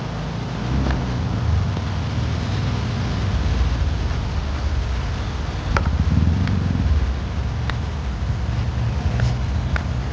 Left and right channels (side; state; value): both; identical; correlation 1.00